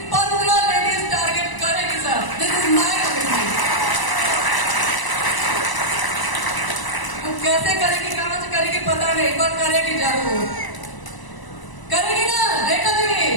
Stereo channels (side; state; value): right; late; 1.0 ms